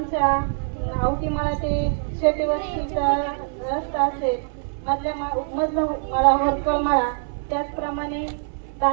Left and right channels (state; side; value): silent; left; 63 dB below the other